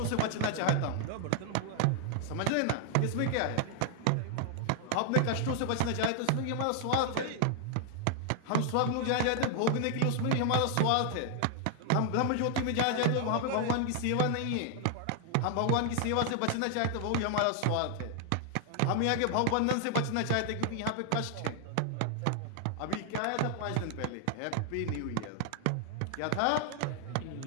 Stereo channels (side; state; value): both; different; correlation 0.00